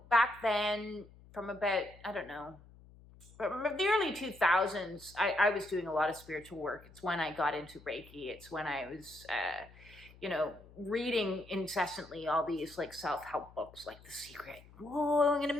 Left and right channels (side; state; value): left; noise; hum, 22 dB below the sound